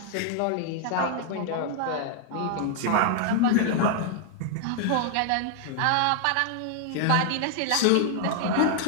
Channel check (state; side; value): different; both; correlation 0.00